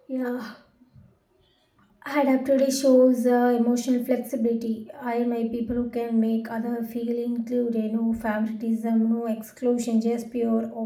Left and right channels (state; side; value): identical; both; correlation 1.00